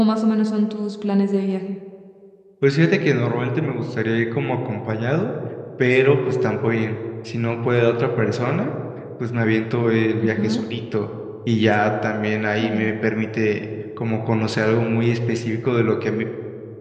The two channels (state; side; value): identical; both; correlation 1.00